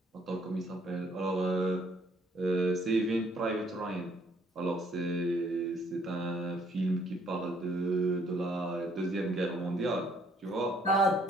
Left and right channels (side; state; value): both; normal; correlation 0.65